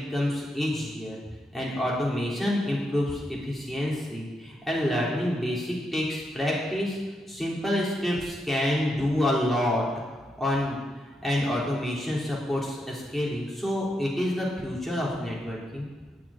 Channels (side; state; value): both; normal; correlation 0.82